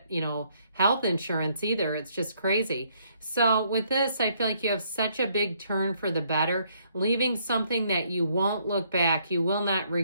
health insurance either. It's just crazy. So with this, I feel like you have such a big turn for the better, leaving something that you won't look back. You will not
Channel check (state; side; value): inverted; both; correlation -0.69